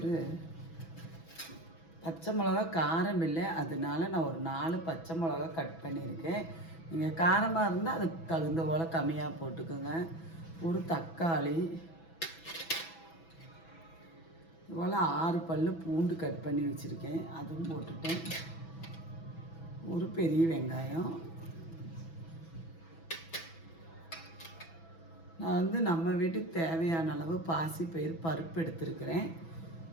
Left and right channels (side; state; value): right; late; 6.1 ms